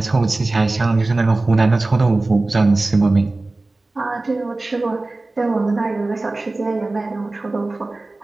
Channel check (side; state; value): left; quieter; 3.1 dB